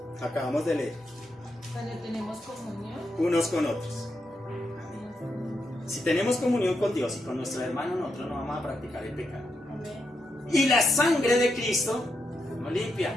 Acabamos de leer. Cuando tenemos comunión Unos con otros. Si tenemos comunión con Dios y con nuestro hermano, nosotros no vamos a practicar el pecado. Y la sangre de Cristo nos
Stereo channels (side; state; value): both; normal; correlation 0.83